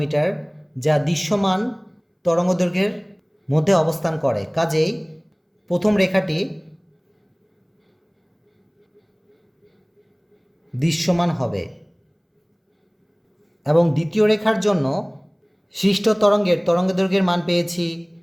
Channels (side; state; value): both; identical; correlation 1.00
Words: যা দৃশ্যমান তরঙ্গদৈর্ঘ্যের মধ্যে অবস্থান করে। কাজেই প্রথম রেখাটি দৃশ্যমান হবে এবং দ্বিতীয় রেখার জন্য সৃষ্ট তরঙ্গের তরঙ্গদৈর্ঘ্যের মান পেয়েছি